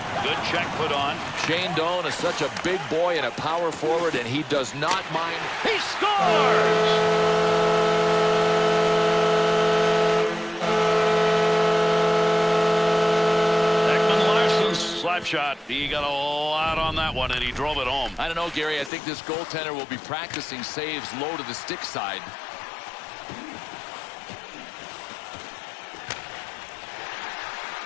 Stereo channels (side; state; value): right; drops out; at 18.9 s